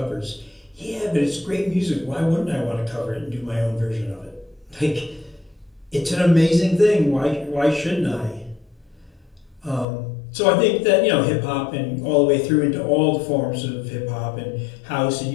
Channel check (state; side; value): drops out; right; at 9.9 s